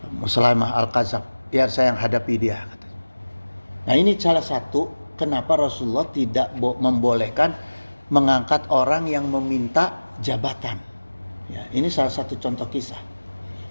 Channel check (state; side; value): inverted; both; correlation -1.00